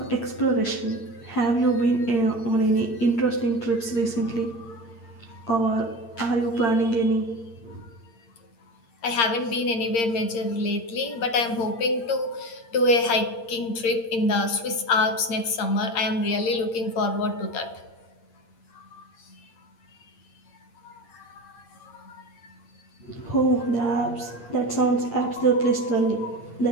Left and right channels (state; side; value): late; right; 8.7 ms